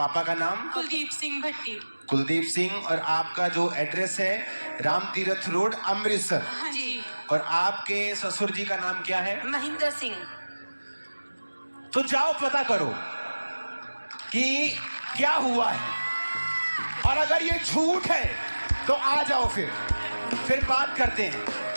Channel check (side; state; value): both; inverted; correlation -1.00